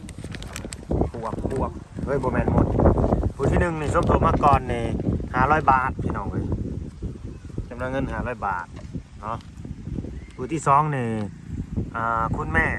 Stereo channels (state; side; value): identical; both; correlation 1.00